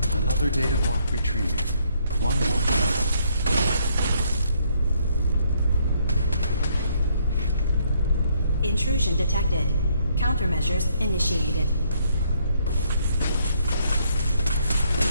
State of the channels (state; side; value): inverted; both; correlation -0.70